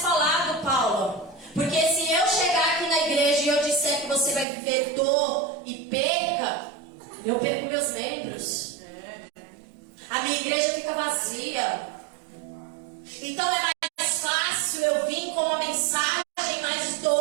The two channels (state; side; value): drops out; left; at 4.5 s